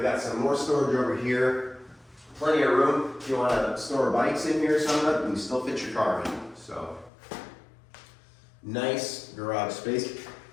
got some more storage over here. Plenty of room. If you want to store bikes in here or something, you can still fit your car in. So, nice garage space.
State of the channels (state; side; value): drops out; right; at 7.1 s